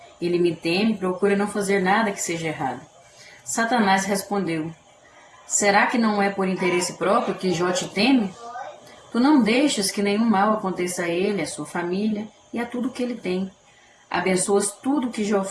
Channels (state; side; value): identical; both; correlation 1.00